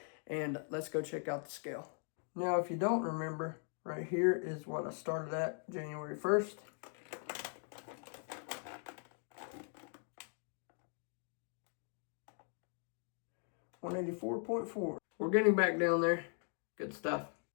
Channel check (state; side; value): silent; right; 51 dB below the other